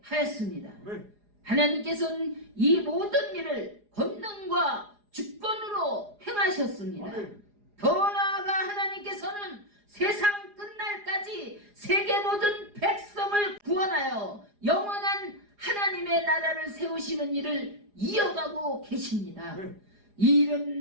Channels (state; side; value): late; left; 4.9 ms